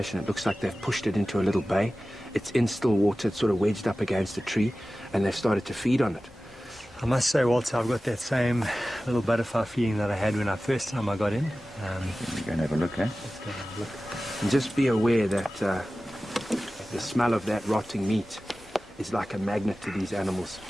It looks like they've pushed it into a little bay. It's in still water, it's sort of wedged up against a tree, and they've started to feed on it. I must say, Walter, I've got that same little butterfly feeling that I had when first time I got in. We're going to have a look, eh? Let's go have a look. And just be aware that the smell of that rotting meat is like a magnet to these animals.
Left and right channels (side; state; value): both; normal; correlation 0.96